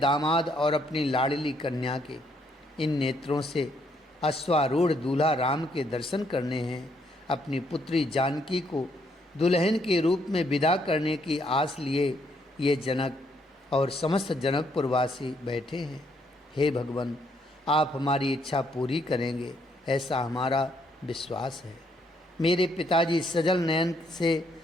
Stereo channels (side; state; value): both; normal; correlation 0.72